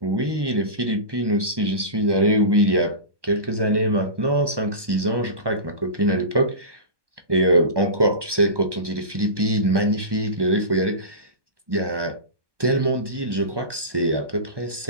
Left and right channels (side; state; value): left; late; 1.2 ms